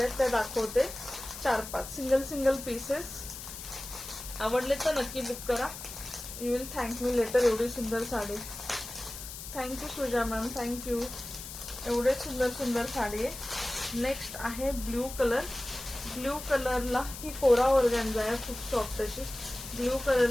त्या दाखवते. 4-5 सिंगल पीसेस. आवडले तर नक्की बुक करा. You will thank me later. एवढी सुंदर sari. Thank you Suja ma'am. Thank you. एवढे सुंदर साडी आहे. नेक्स्ट आहे ब्ल्यू कलर. ब्ल्यू कलरला ही कोरा ऑर्गॅन्झा आहे, खूप सॉफ्ट अशी. ब्ल्यू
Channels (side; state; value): left; noise; hiss, 11 dB below the sound